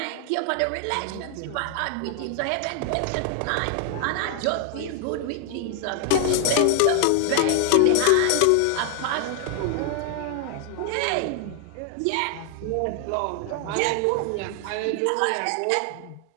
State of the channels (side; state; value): both; different; correlation 0.00